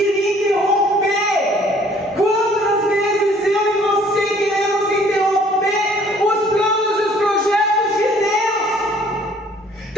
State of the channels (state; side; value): normal; both; correlation 0.57